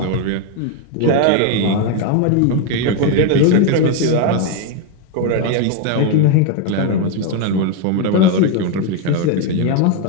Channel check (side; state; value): both; different; correlation 0.01